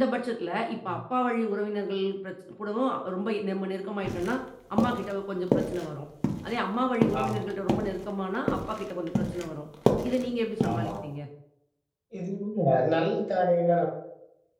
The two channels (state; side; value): identical; both; correlation 1.00